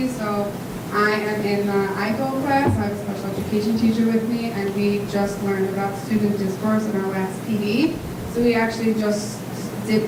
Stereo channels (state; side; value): identical; both; correlation 1.00